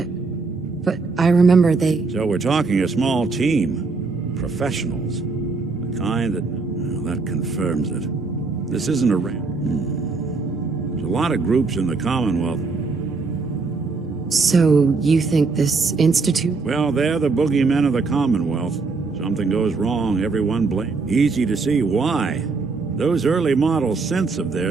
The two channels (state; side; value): quieter; left; 4.2 dB